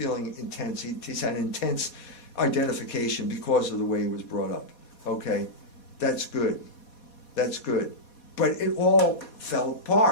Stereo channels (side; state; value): right; late; 4.2 ms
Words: intense. He's had intense identification because of the way he was brought up. Okay, that's good. That's good. But it all fell